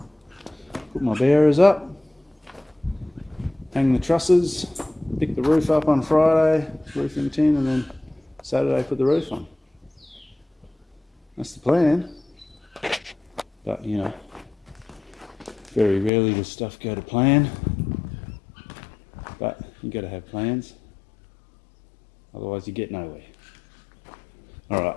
put my bearers up, hang the trusses, pick the roof up on Friday, roofing tin, and then Saturday put the roof on. That's the plan. But you know, very rarely does stuff go to plan, but you got to have plans, otherwise you get nowhere. Alright,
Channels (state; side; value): drops out; right; at 16.1 s